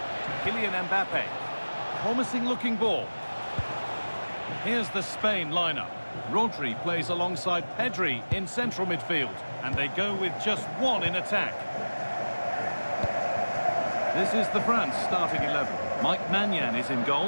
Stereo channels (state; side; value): inverted; both; correlation -1.00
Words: Kylian Mbappe. Promising looking ball. Here's the Spain lineup. Rodri plays alongside Pedri in central midfield. And they go with just one in attack. This is the France starting 11. Mike Maignan is in